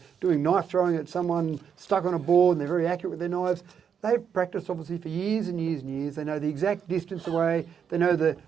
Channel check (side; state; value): left; quieter; 7.5 dB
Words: doing knife throwing at someone stuck on a board and they're very accurate with their knives. They've practiced obviously for years and years and years. They know the exact distance away. They know the